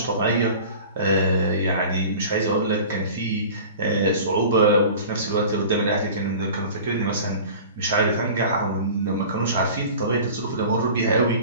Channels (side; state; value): both; inverted; correlation -0.40